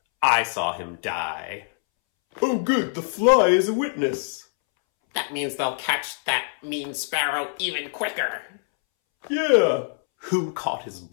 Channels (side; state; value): right; silent; 63 dB below the other